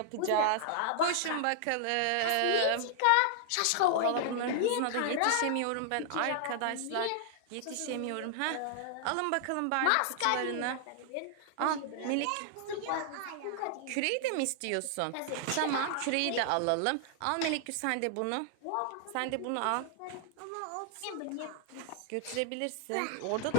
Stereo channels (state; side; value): different; both; correlation -0.01